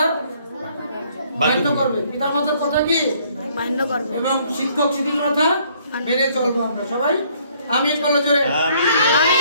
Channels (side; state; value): both; inverted; correlation -0.63